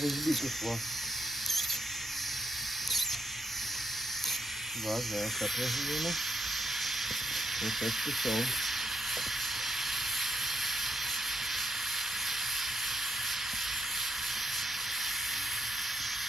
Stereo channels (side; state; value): both; normal; correlation 0.77